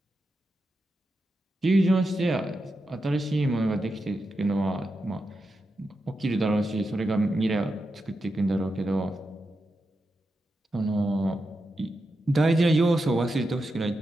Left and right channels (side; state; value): both; normal; correlation 0.88